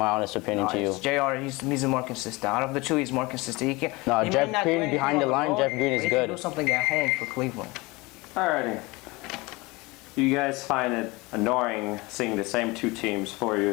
honest opinion to you. J.R., he's more consistent. Out of the 2, he's more consistent. Jeff Green behind the line, Jeff Green is good. He can do something at home for Cleveland. Alrighty. Do you guys find it annoying seeing the same 2 teams 4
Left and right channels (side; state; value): right; quieter; 23.6 dB